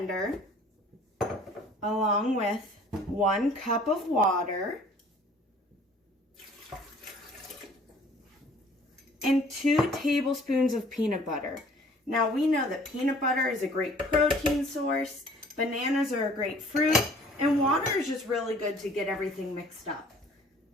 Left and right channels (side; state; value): both; normal; correlation 0.53